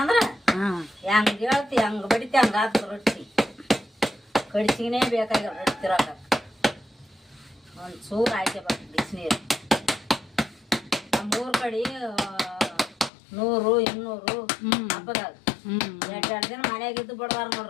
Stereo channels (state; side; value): drops out; right; at 13.1 s